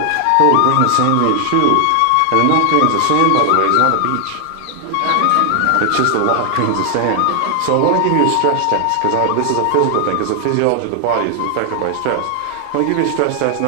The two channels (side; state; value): both; different; correlation 0.00